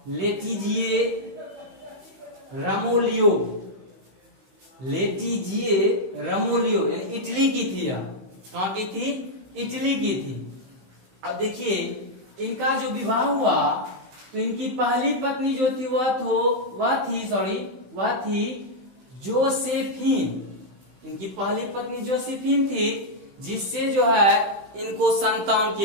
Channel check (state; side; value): late; left; 16 ms